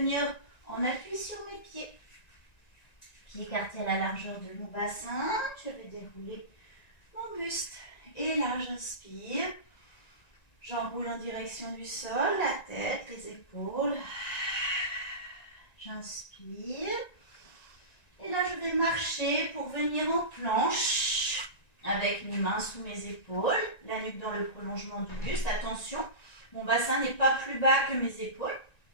en appui sur mes pieds. Pieds écartés à la largeur de mon bassin. Je vais dérouler mon buste. Et là, j'inspire. J'enroule en direction du sol, la tête, les épaules. J'inspire. Et là, je vais marcher pour venir en planche avec mes mains sous mes épaules, la nuque dans le prolongement du buste. Attention, mon bassin n'est pas plus bas que mes épaules.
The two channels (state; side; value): late; right; 1.9 ms